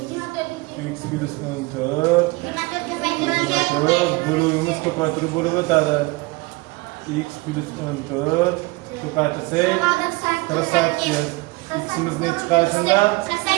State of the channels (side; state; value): left; quieter; 23.8 dB